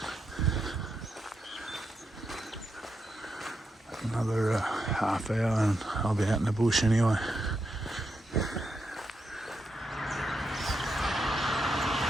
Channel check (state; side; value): normal; both; correlation 0.84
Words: Another half hour and I'll be out in the bush anyway.